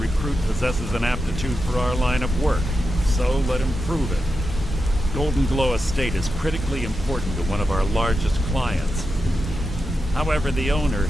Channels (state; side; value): normal; both; correlation 0.89